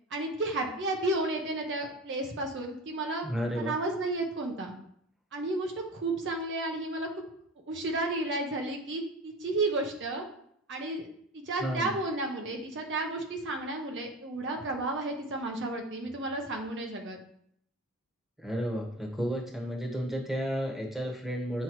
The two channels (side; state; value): both; normal; correlation 0.34